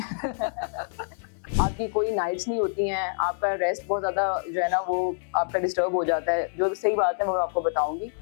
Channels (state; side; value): silent; right; digital silence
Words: है। आपकी कोई नाइट्स नहीं होती हैं, आपका रेस्ट बहुत ज्यादा जो है ना वो आपका डिस्टर्ब हो जाता है। जो सही बात है वो मैं आपको बताऊंगी।